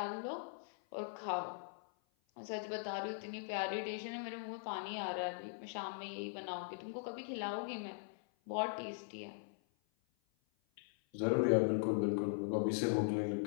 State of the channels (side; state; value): right; silent; 51 dB below the other